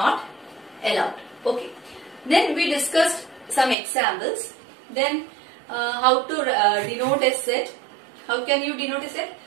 allowed. Okay. Then we discussed some examples. Then how to denote a set. How can you denote a set?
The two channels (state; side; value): drops out; left; at 3.8 s